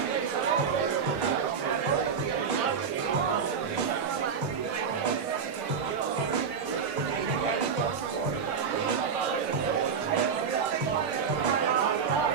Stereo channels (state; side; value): quieter; left; 6.3 dB